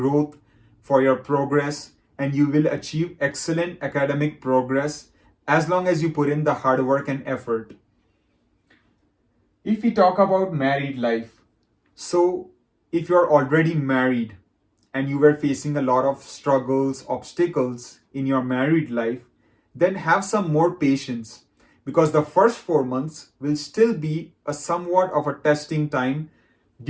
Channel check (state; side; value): identical; both; correlation 1.00